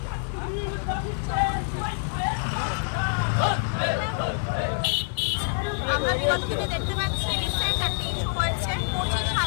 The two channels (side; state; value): right; silent; 61 dB below the other